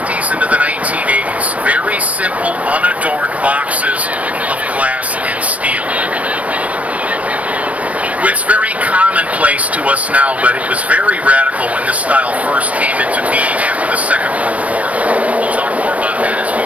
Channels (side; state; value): left; late; 0.067 ms